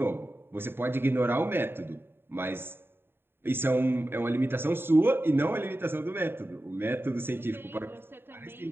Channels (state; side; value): late; left; 0.11 ms